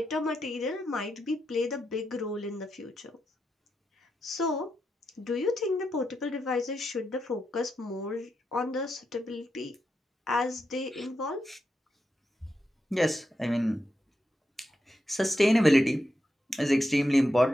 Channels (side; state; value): both; normal; correlation 0.85